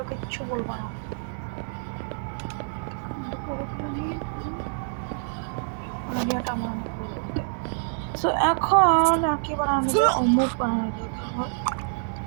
কিচ্ছু বলবো না। সো এখন আর কি বানানো যাবে? মুখ বানানো যাবে আমার।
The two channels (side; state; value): left; silent; digital silence